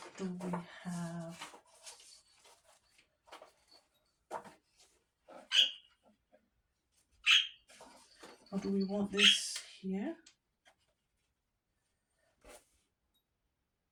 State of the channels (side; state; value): both; identical; correlation 1.00